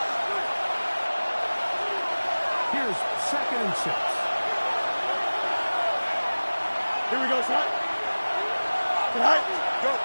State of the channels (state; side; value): inverted; both; correlation -1.00